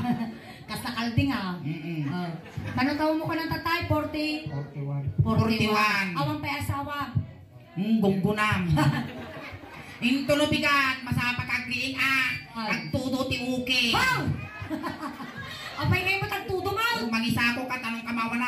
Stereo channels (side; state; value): both; identical; correlation 1.00